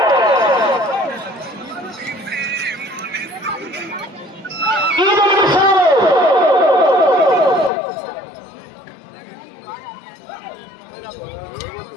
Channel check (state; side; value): drops out; right; at 7.7 s